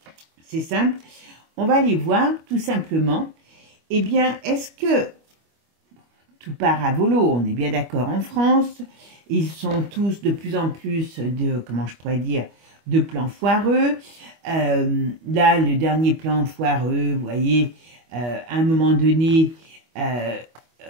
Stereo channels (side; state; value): left; late; 25 ms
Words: c'est simple. On va aller voir tout simplement, eh bien, est-ce que tout part à volo? On est bien d'accord en France. Ils sont tous de plus en plus de, comment je pourrais dire, de plans foireux. Là, le dernier plan foireux, vous voyez, à un moment donné,